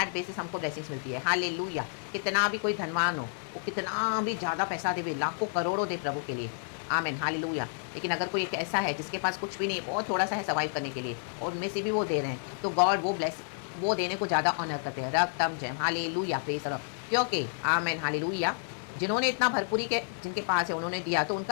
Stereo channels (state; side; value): silent; right; digital silence